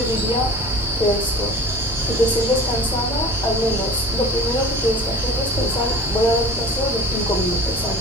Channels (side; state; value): both; normal; correlation 0.40